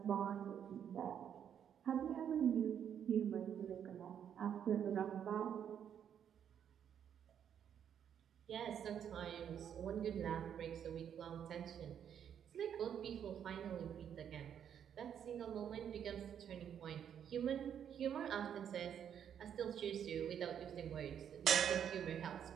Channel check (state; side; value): quieter; left; 8.8 dB